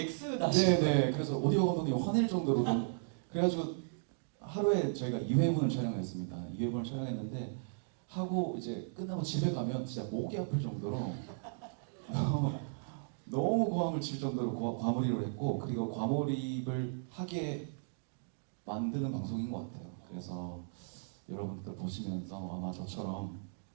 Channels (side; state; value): left; silent; digital silence